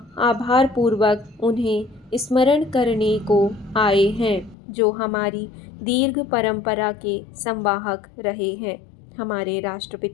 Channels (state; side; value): drops out; right; at 4.5 s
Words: आभारपूर्वक उन्हें स्मरण करने को आए हैं जो हमारी दीर्घ परंपरा के संवाहक रहे हैं। हमारे